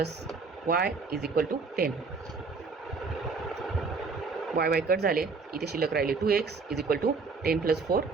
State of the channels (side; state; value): left; quieter; 4.5 dB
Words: Y is equal to 10. Y cut झाले, इथे शिल्लक राहिले 2x is equal to 10 plus 4